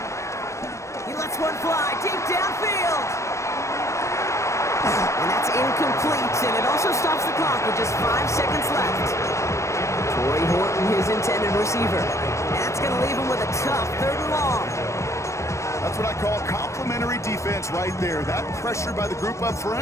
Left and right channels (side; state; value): right; late; 0.14 ms